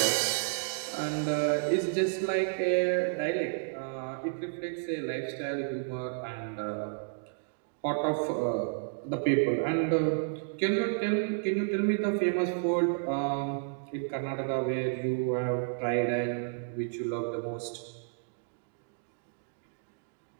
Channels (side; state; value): left; silent; digital silence